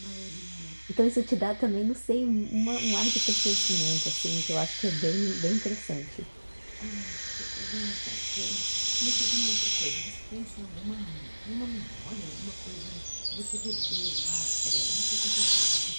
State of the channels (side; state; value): both; inverted; correlation -1.00